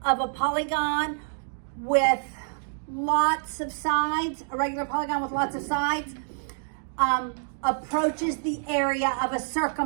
of a polygon with lots of sides, a regular polygon with lots of sides, approaches the area of a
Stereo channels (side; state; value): left; silent; digital silence